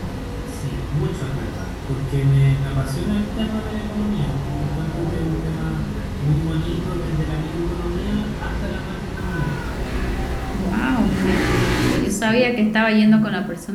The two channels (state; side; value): identical; both; correlation 1.00